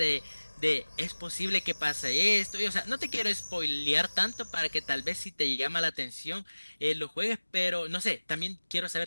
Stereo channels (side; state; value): both; inverted; correlation -1.00